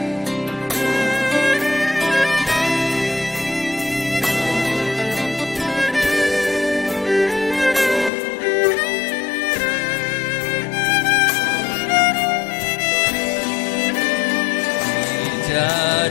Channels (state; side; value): drops out; right; at 8.1 s